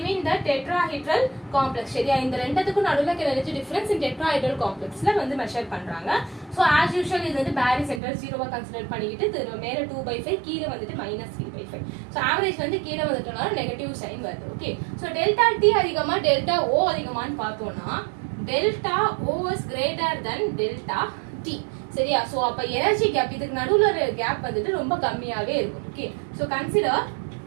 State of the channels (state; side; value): drops out; left; at 8.0 s